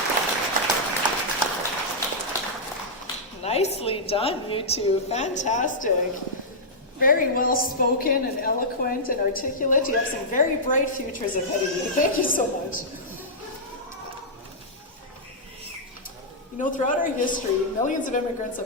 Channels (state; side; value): normal; both; correlation -0.10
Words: Nicely done, you two. Fantastic. Very well spoken and eloquent and articulate. You have some very bright futures ahead of you. Thank you so much. You know, throughout our history, millions of immigrants